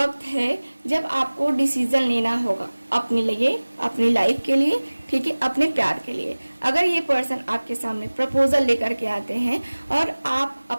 है जब आपको डिसीजन लेना होगा अपने लिए, अपनी लाइफ के लिए। ठीक है, अपने प्यार के लिए। अगर ये पर्सन आपके सामने प्रपोजल लेकर के आते हैं और आप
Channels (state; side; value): inverted; both; correlation -1.00